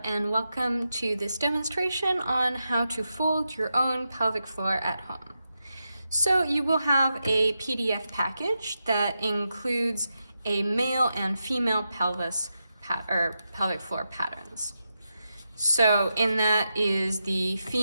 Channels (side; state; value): both; inverted; correlation -0.87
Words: and welcome to this demonstration on how to fold your own pelvic floor at home. So you will have a PDF package that includes a male and female pelvic floor patterns. So in that is the